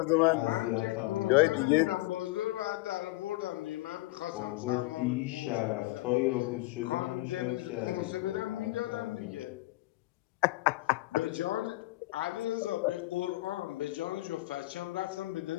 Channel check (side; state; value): right; quieter; 19.8 dB